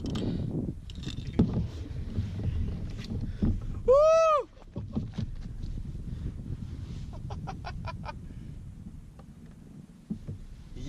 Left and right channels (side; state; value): both; identical; correlation 1.00